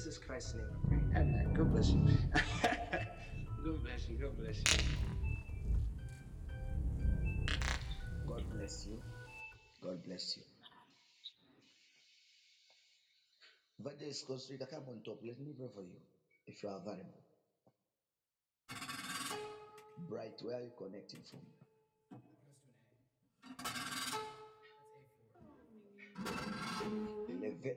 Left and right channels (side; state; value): both; identical; correlation 1.00